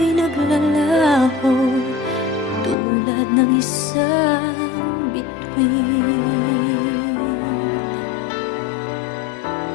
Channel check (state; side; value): drops out; right; at 2.8 s